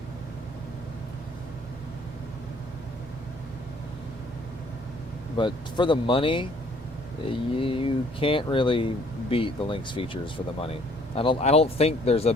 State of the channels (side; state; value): both; normal; correlation 0.60